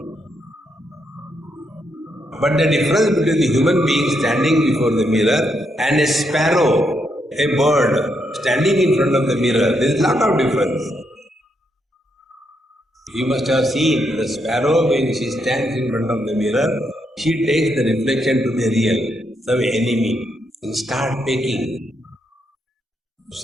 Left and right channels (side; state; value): both; normal; correlation 0.79